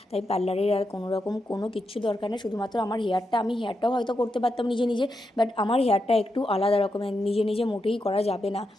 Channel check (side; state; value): both; normal; correlation 0.85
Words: তাই পার্লারের আর কোনো রকম কোনো কিচ্ছু দরকার নেই, শুধুমাত্র আমার আমি হেয়ারটাও হয়তো করতে পারতাম নিজে নিজে, বাট আমার হেয়ারটা একটু আলাদা রকমের, নিজে নিজে মোটেই করা যাবে না,